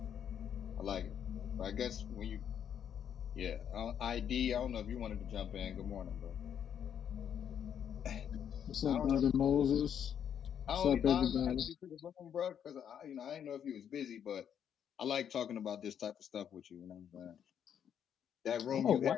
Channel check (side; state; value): right; quieter; 8.7 dB